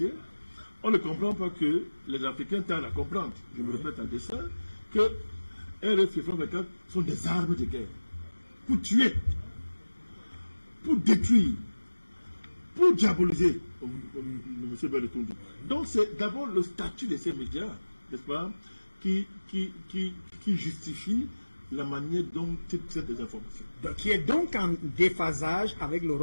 on ne comprend pas que les Africains tardent à comprendre, je me répète à dessein, que RFI et France 24 sont des armes de guerre. Pour tuer, pour détruire, pour diaboliser, comme M. Berretundi. Donc c'est d'abord le statut de ces médias, n'est-ce pas, qui justifie la manière dont ils traitent des informations. Qui est donc en déphasage avec le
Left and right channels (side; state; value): both; inverted; correlation -1.00